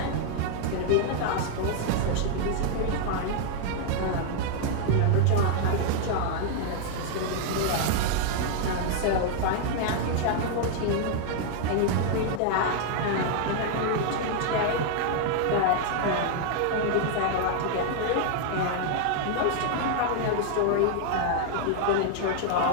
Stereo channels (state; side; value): different; both; correlation 0.00